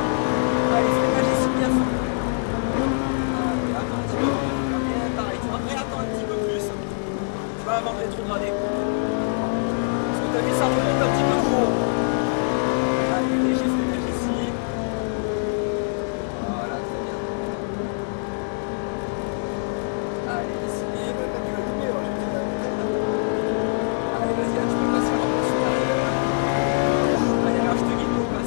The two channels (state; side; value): silent; right; digital silence